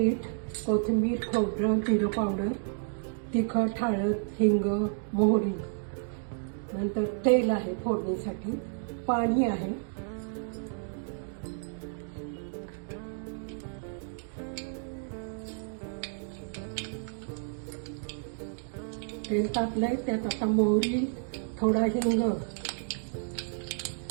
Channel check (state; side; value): silent; left; digital silence